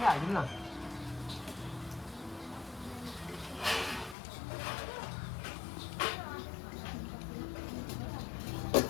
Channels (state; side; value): drops out; right; at 4.2 s